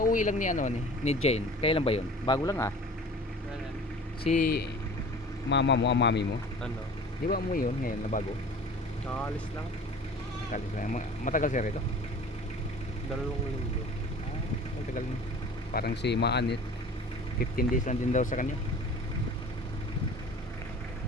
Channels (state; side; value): normal; both; correlation 0.43